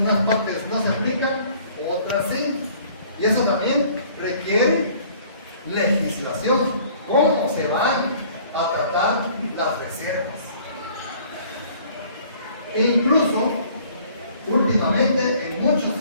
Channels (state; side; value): inverted; both; correlation -0.55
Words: unas partes no se aplican, otras sí. Y eso también requiere legislación. ¿Cómo se van a tratar las reservas? E incluso, últimamente, en muchos